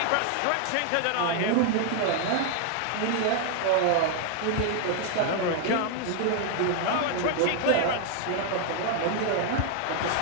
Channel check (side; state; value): both; different; correlation 0.00